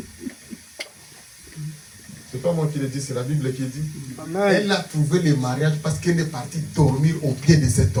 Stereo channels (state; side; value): identical; both; correlation 1.00